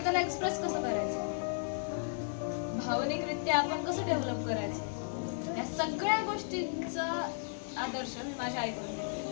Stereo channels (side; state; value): right; silent; 55 dB below the other